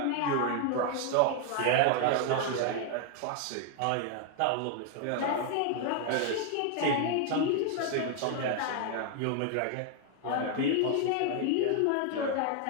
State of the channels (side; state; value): both; different; correlation 0.00